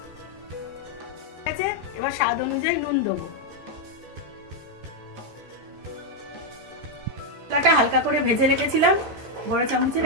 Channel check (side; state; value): left; late; 14 ms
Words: এবার স্বাদ অনুযায়ী নুন দেবো। মশলাটা হালকা করে ভেজে রেখেছিলাম, বড় চামচের